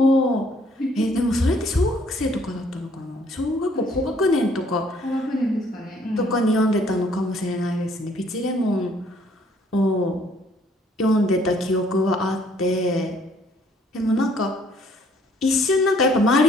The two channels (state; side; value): normal; both; correlation 0.63